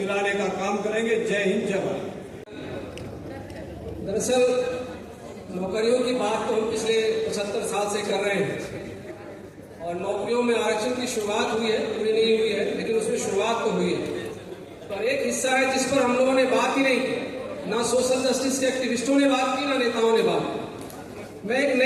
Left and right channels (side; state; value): both; identical; correlation 1.00